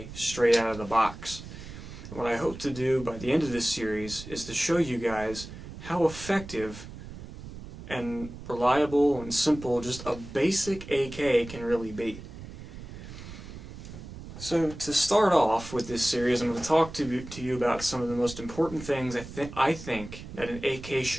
straight out of the box. And what I hope to do by the end of this series is to show you guys how effective and reliable and simple just a basic AK can really be. So to start off with this series, I'm going to talk to you about some of the most important things I think that an AK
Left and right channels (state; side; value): noise; right; rumble, 13 dB below the sound